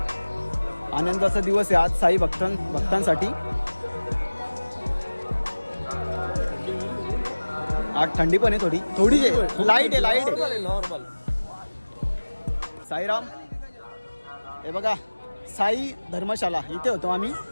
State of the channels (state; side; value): inverted; both; correlation -1.00